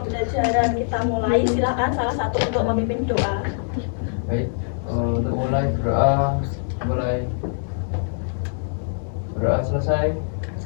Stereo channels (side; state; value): right; silent; digital silence